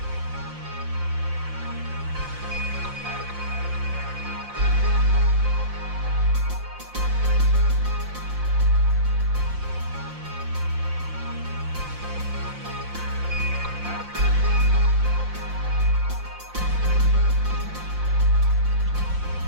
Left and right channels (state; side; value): late; left; 5.7 ms